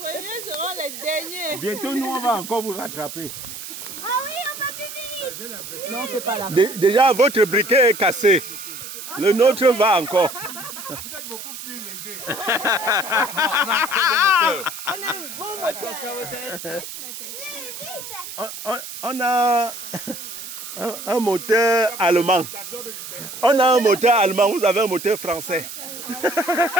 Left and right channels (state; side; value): noise; right; hiss, 10 dB below the sound